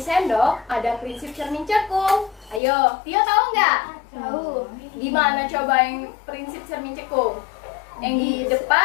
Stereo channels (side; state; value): right; drops out; at 2.6 s